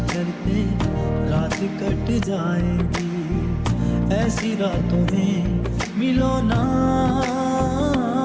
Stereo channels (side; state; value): both; identical; correlation 1.00